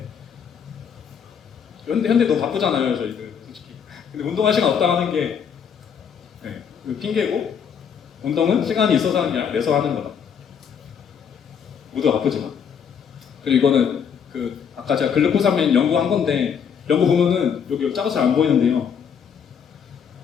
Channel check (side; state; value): right; quieter; 7.3 dB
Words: 현대 너무 바쁘잖아요 저희들 솔직히. 근데 운동할 시간 없다 하는 게 핑계고, 운동은 시간이 있어서 하는 게 아니라 내서 하는 거다. 모두 바쁘지만. 그리고 이거는 아까 제가 글루코사민 연구한 건데, 연구 보면은 여기 작아서 안 보이는데요.